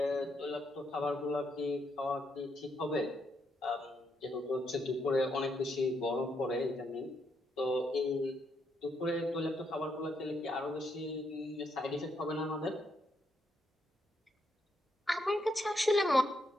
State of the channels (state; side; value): normal; both; correlation 0.78